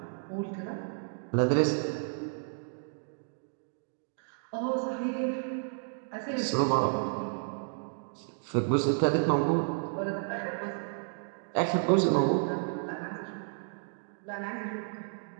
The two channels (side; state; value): left; silent; digital silence